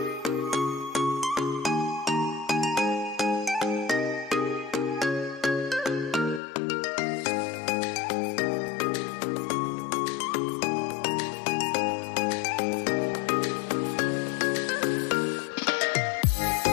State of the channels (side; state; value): right; drops out; at 6.4 s